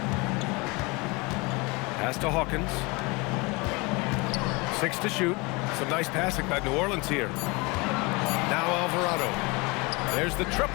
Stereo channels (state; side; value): quieter; right; 26.5 dB